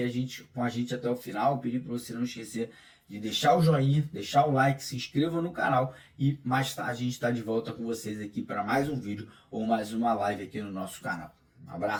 com a gente até o final. Pedir para você não esquecer de deixar o joinha, deixar o like, se inscreva no canal, e mais tarde a gente está de volta com vocês aqui para mais um vídeo ou mais uma live aqui no nosso canal. Um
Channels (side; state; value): both; identical; correlation 1.00